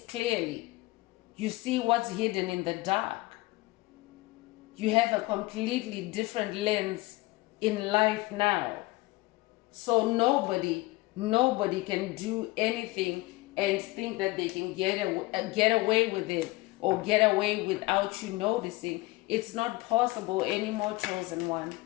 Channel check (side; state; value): right; quieter; 21.3 dB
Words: clearly. You see what's hidden in the dark. You have a completely different lens in life now. So nobody can do anything and think that they can get away with it or get away without you noticing. It's not possible anymore, chosen one.